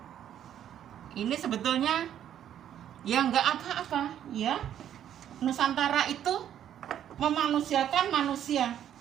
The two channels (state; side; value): quieter; left; 10.3 dB